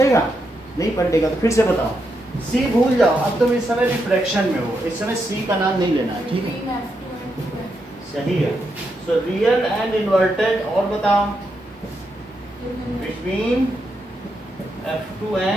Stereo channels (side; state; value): both; normal; correlation 0.82